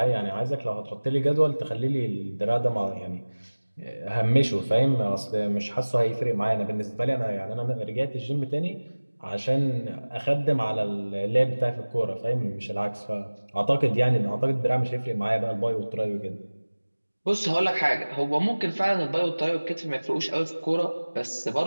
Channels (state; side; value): inverted; both; correlation -1.00